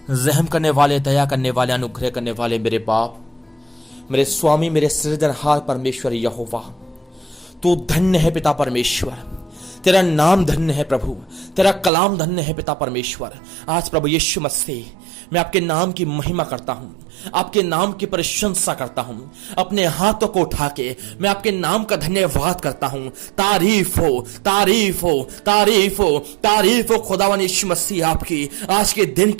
रहम करने वाले, दया करने वाले, अनुग्रह करने वाले मेरे बाप, मेरे स्वामी, मेरे सृजनहार परमेश्वर यहोवा, तू धन्य है पिता परमेश्वर। तेरा नाम धन्य है प्रभु, तेरा कलाम धन्य है पिता परमेश्वर। आज प्रभु यीशु मसीह, मैं आपके नाम की महिमा करता हूं, आपके नाम की प्रशंसा करता हूं। अपने हाथों को उठा के मैं आपके नाम का धन्यवाद करता हूं। तारीफ हो, तारीफ हो, तारीफ हो, तारीफ हो खुदावन यीशु मसीह आपकी आज के दिन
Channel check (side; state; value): left; drops out; at 11.9 s